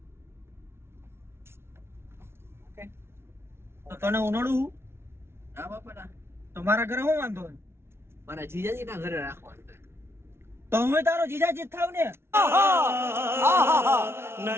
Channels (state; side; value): late; left; 0.12 ms